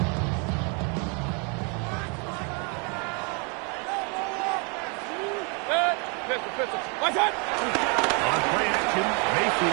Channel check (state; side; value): quieter; left; 34.9 dB